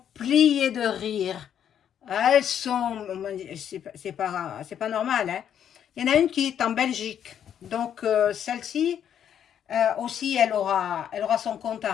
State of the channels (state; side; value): quieter; right; 9.3 dB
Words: pliées de rire. Elles sont... C'est pas normal, hein. Il y en a une qui est en Belgique. Donc, celle-ci, aussi, elle aura son compte à